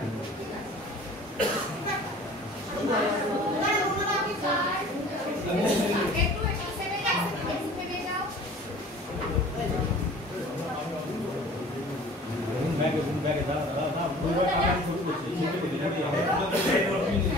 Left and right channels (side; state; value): both; normal; correlation 0.46